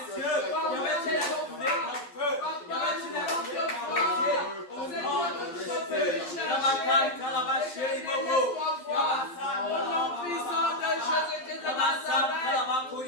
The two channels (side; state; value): right; late; 12 ms